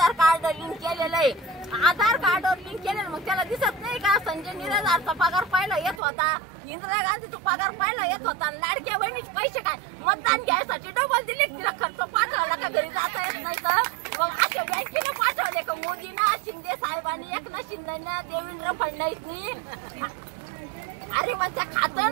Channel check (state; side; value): drops out; left; at 6.0 s